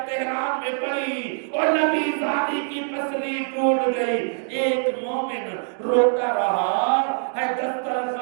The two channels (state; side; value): silent; left; 61 dB below the other